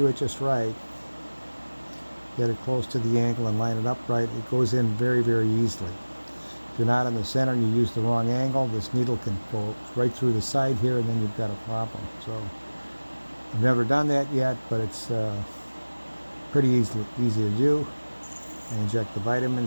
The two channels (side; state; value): both; inverted; correlation -1.00